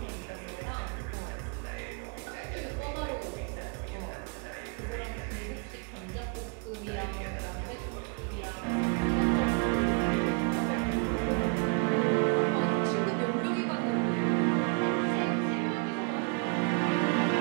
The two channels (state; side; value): quieter; left; 34.7 dB